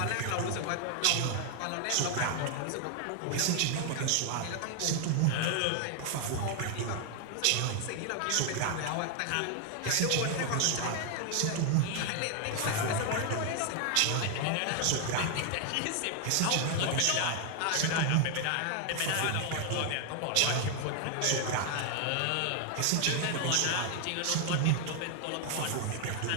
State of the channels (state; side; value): different; both; correlation 0.00